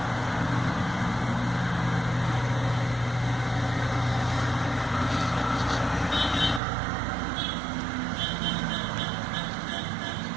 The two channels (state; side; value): drops out; left; at 6.6 s